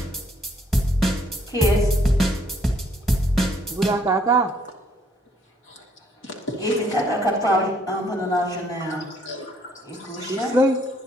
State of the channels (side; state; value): both; normal; correlation 0.67